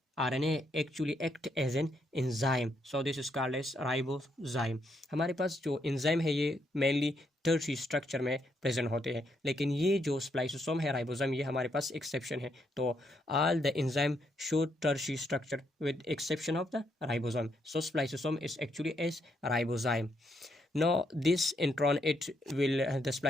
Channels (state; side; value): normal; both; correlation 0.76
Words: RNA actually act as an enzyme, so this is called as ribozyme. हमारे पास जो enzyme है ये mainly tertiary structure में present होते हैं, लेकिन ये जो स्प्लाइसोसोम है राइबोसोम, ये हमारे पास एक्सेप्शन है. तो all the enzyme show tertiary structure with exception of the ribosome. So spliceosome is actually as ribozyme. Now this intron, it will the